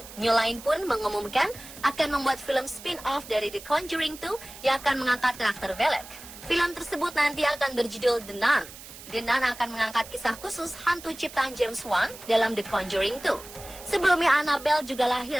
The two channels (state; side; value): noise; right; hiss, 16 dB below the sound